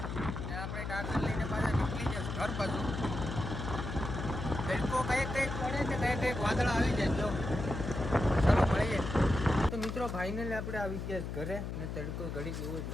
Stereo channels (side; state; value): left; noise; hum, 5 dB below the sound